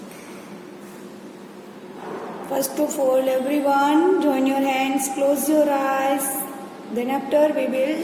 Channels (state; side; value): identical; both; correlation 1.00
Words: First of all, everyone, join your hands, close your eyes. Then after we